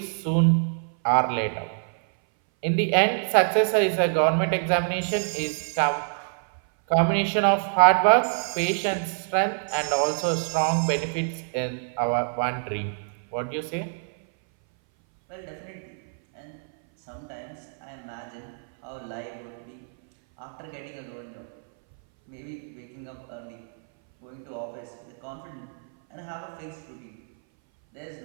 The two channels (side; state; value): left; silent; 59 dB below the other